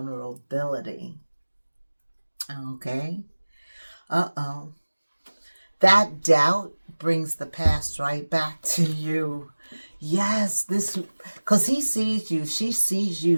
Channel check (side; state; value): both; inverted; correlation -1.00